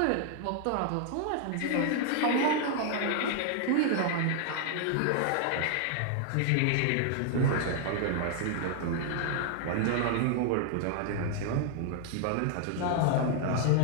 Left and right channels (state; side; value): different; both; correlation 0.00